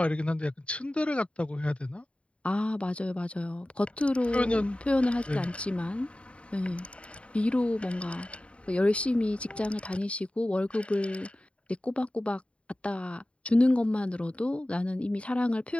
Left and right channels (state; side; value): late; right; 0.060 ms